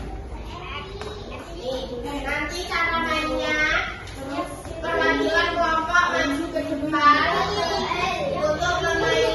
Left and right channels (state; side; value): identical; both; correlation 1.00